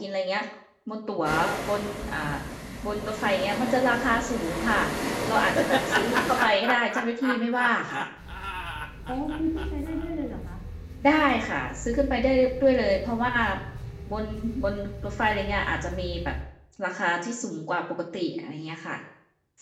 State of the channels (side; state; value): both; identical; correlation 1.00